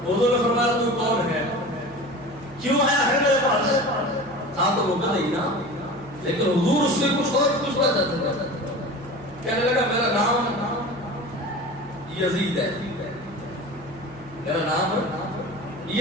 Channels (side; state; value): right; noise; hum, 22 dB below the sound